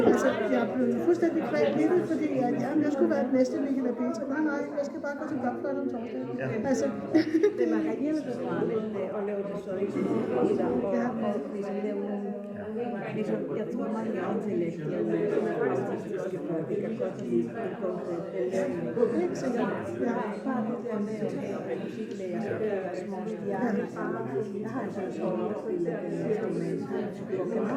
altså, jeg blev fuldstændig kvalt i det, fordi jeg skulle være den næste Michael og Peter. Nej, jeg skal bare gå til blokfløjte om torsdagen. Altså, det var rigtig befriende at lave det så ikke og ligesom lave ligesom, jeg tror mange intellektuelle artistiske folk, det kan godt lide en konkret belønning. ikke sikkert. Ja. Bare det der med at have musiklærer, så det er små stjerner. Jeg har sådan en sådan opspillet instrument, på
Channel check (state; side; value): identical; both; correlation 1.00